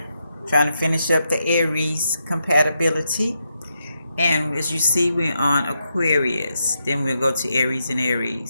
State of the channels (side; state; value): both; inverted; correlation -0.82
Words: trying to finish up the Aries compatibility. And as you see, we're on Aquarius. Then we'll go to Aries and